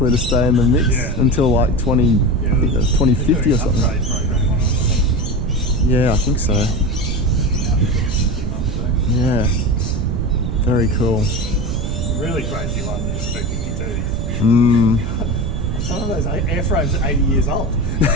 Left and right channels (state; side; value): noise; right; rumble, 3 dB below the sound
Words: to stay in the mix until like 2050 or something. Program on it, I think. Yeah, I think so. Yeah, very cool. The really crazy one is the B-52. Mm. And some of those airframes are 80 years old.